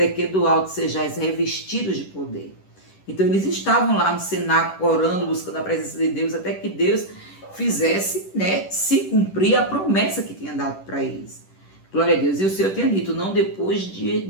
que do alto sejais revestidos de poder. Então eles estavam lá no cenáculo, orando, buscando a presença de Deus, até que Deus fizesse, se cumprir a promessa que tinha dado para eles. Glória a Deus. E o Senhor tinha dito, não depois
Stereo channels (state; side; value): late; right; 10 ms